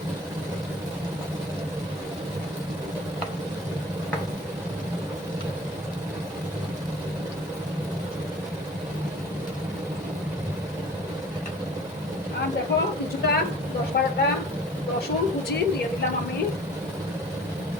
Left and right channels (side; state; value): both; normal; correlation 0.46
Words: আর দেখো কিছুটা 10-12টা রসুন কুচি দিয়ে দিলাম আমি,